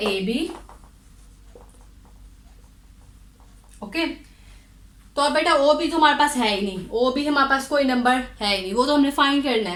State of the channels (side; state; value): both; identical; correlation 1.00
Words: ए बी। ओके, तो अब बेटा ओ बी तो हमारे पास है ही नहीं, ओ बी हमारे पास कोई नंबर है ही नहीं, वो तो हमने फाइंड करना